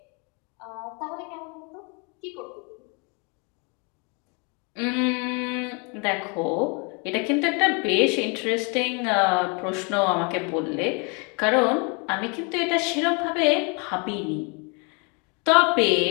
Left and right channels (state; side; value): quieter; right; 33.1 dB